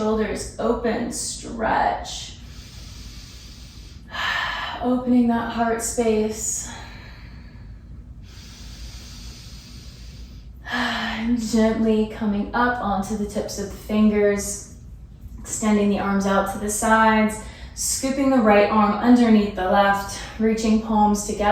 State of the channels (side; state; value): both; identical; correlation 1.00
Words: open, stretch. Opening that heart space. And gently coming up onto the tips of the fingers, extending the arms out to the sides, scooping the right arm underneath the left, reaching palms